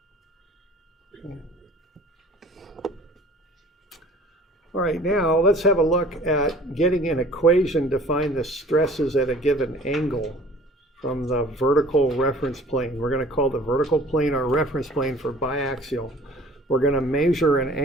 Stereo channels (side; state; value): both; normal; correlation 0.49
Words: Okay. All right, now let's have a look at getting an equation to find the stresses at a given angle from the vertical reference plane. We're going to call the vertical plane our reference plane for biaxial. We're going to measure an